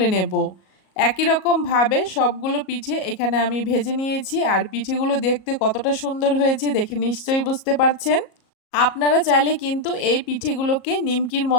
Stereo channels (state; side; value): late; right; 37 ms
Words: নেব। একই রকমভাবে সবগুলো পিঠে এখানে আমি ভেজে নিয়েছি। আর পিঠেগুলো দেখতে কতটা সুন্দর হয়েছে দেখে নিশ্চয়ই বুঝতে পারছেন। আপনারা চাইলে কিন্তু এই পিঠেগুলোকে নিমকির